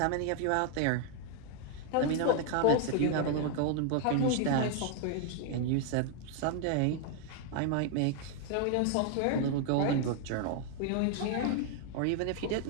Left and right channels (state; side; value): different; both; correlation 0.00